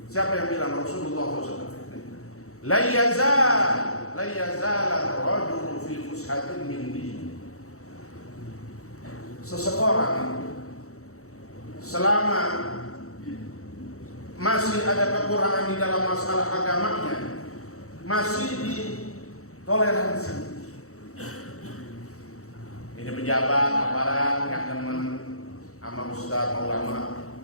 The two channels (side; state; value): right; late; 0.64 ms